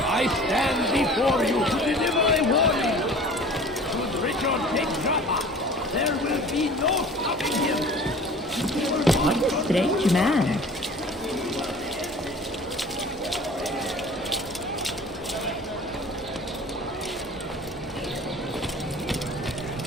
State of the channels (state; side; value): normal; both; correlation 0.44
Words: I stand before you to deliver a warning. Should Richard take Jaffa, there will be no stopping him. What a strange man.